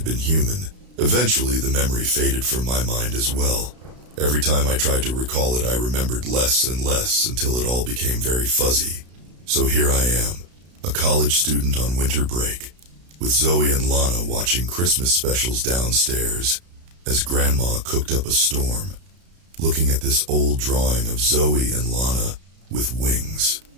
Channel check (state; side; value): late; left; 33 ms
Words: been human. Eventually, the memory faded from my mind as well. Every time I tried to recall it, I remembered less and less until it all became very fuzzy. So here I am, a college student on winter break, with Zoe and Lana watching Christmas specials downstairs as Grandma cooked up a storm, looking at this old drawing of Zoe and Lana with wings.